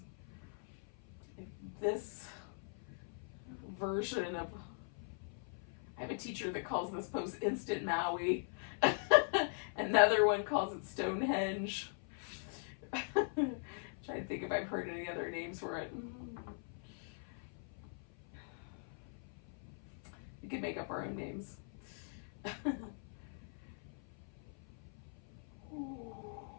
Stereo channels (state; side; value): silent; right; 50 dB below the other